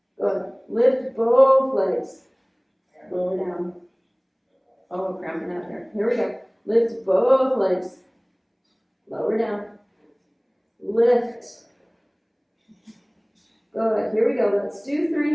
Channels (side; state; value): both; identical; correlation 1.00